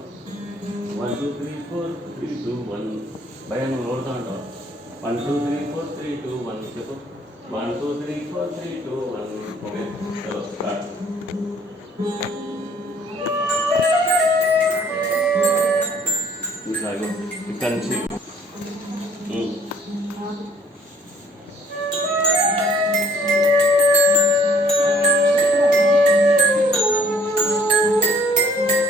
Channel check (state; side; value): normal; both; correlation 0.58